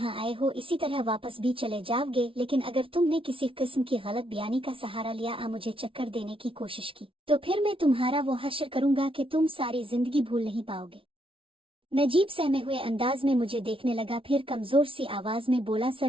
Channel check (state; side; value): late; left; 0.25 ms